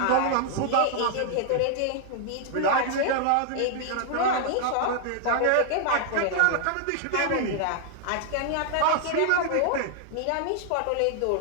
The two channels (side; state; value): both; different; correlation -0.01